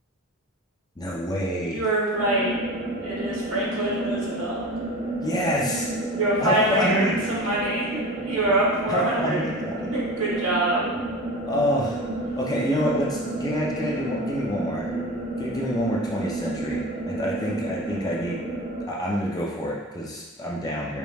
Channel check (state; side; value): normal; both; correlation 0.33